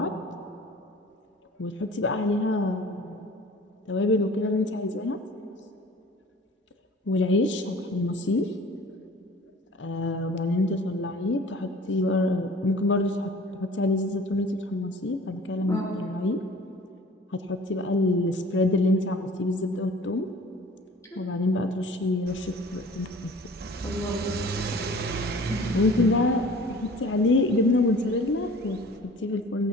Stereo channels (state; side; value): normal; both; correlation 0.46